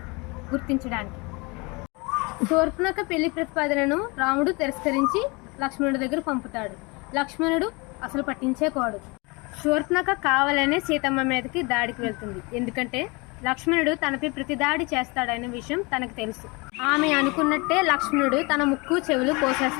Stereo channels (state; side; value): quieter; right; 27.6 dB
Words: గుర్తించడానికి. శూర్పణఖ పెళ్లి ప్రతిపాదనను రాముడు తిరస్కరించి లక్ష్మణుడి దగ్గర పంపుతాడు. లక్ష్మణుడు అసలు పట్టించేకోడు. శూర్పణఖ కావాలనే సీతమ్మ మీదకి దాడికి వెళ్తుంది. ఎందుకంటే లక్ష్మణుడు తనపై ప్రతి దాడి చేస్తాడనే విషయం తనకు తెలుసు. ఆమె అనుకున్నట్టే లక్ష్మణుడు తన ముక్కు చెవులు